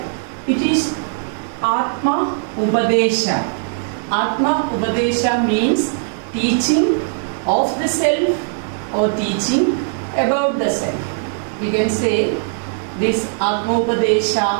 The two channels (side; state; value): left; silent; 64 dB below the other